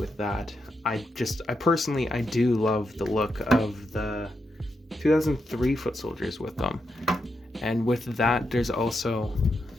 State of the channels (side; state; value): both; normal; correlation 0.84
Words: that. I personally do love the look of the 2003 foot soldiers with them, and with that there's also